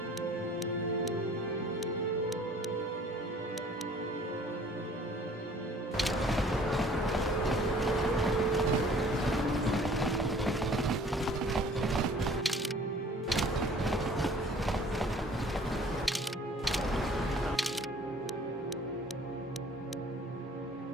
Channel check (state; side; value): normal; both; correlation 0.53